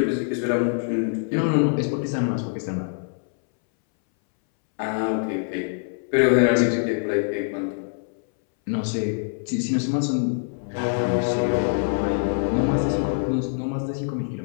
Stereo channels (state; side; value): silent; right; 62 dB below the other